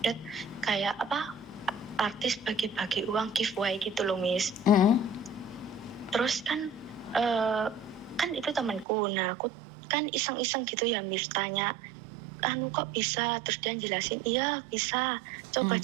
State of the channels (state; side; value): drops out; left; at 8.8 s